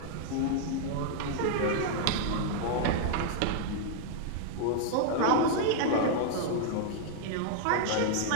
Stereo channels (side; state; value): both; different; correlation -0.01